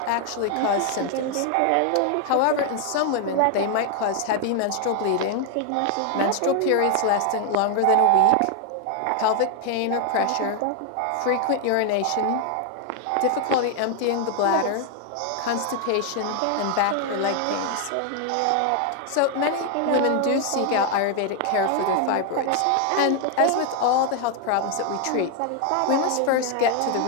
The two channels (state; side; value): different; both; correlation 0.00